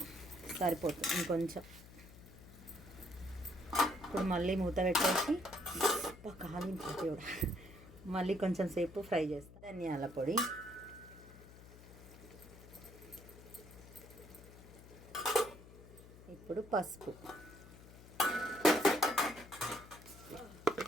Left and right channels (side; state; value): left; noise; hum, 18 dB below the sound